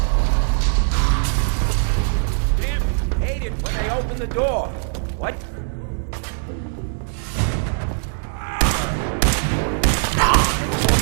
Damn, hate it when they open the door. What? Move.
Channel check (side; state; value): left; silent; 65 dB below the other